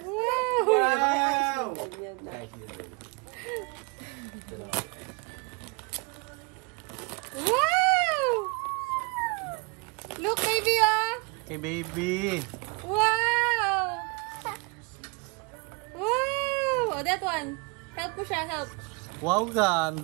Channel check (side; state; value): left; quieter; 30.6 dB